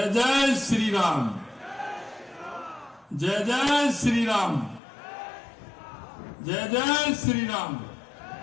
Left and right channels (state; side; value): drops out; right; at 4.8 s